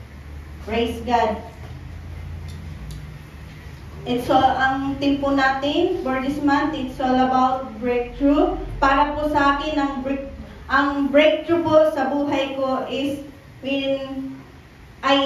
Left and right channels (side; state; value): both; identical; correlation 1.00